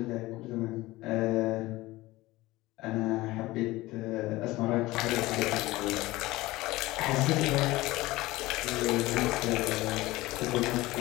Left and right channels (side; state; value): right; quieter; 19.0 dB